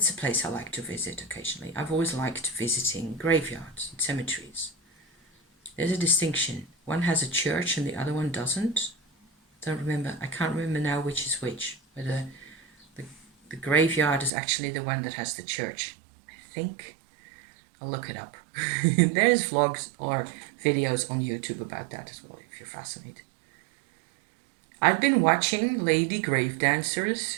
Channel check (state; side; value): drops out; left; at 14.3 s